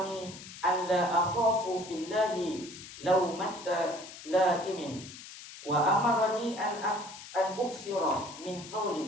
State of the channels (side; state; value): left; noise; hiss, 14 dB below the sound